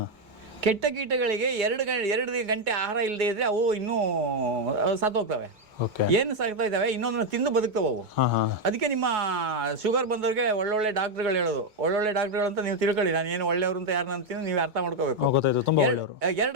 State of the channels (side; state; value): left; late; 2.2 ms